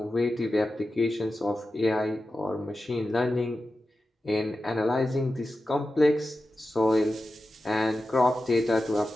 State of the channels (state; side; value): normal; both; correlation 0.92